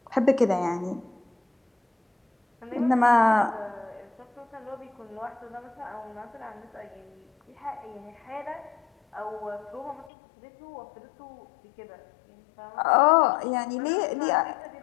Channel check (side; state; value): right; drops out; at 10.1 s